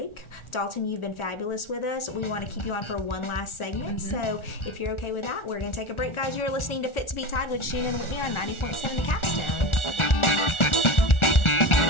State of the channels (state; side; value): late; right; 1.4 ms